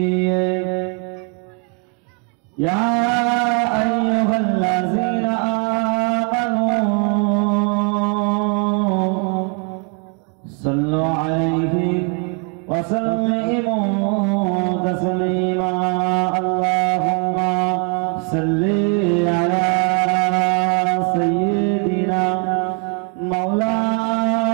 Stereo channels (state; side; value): quieter; left; 35.0 dB